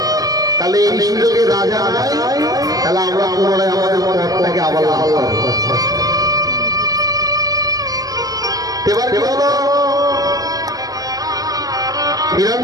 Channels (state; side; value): late; left; 0.18 ms